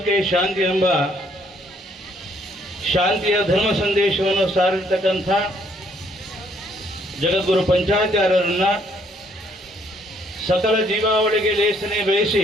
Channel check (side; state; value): both; normal; correlation 0.67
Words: ಶಾಂತಿ ಎಂಬ ಶಾಂತಿಯ ಧರ್ಮ ಸಂದೇಶವನ್ನು ಸಾರಿರ್ತಕ್ಕಂಥ ಜಗದ್ಗುರು ಪಂಚಾಚಾರ್ಯರನ್ನ ಸಕಲ ಜೀವಾವಳಿಗೆ ಲೇಸನೆ